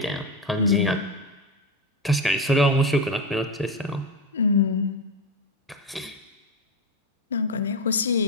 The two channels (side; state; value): both; normal; correlation 0.16